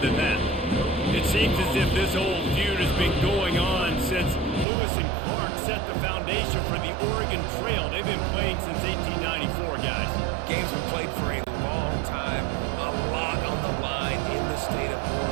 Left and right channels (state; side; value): drops out; left; at 4.7 s